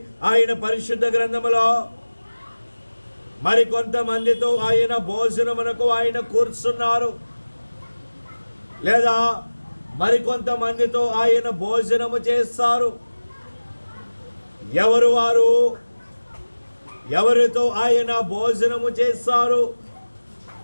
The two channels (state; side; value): inverted; both; correlation -1.00